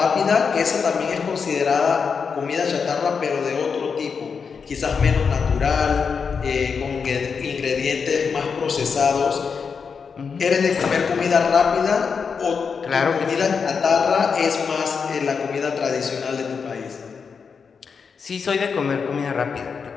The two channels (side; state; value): right; quieter; 5.8 dB